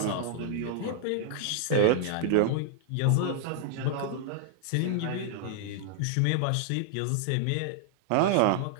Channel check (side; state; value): both; different; correlation -0.01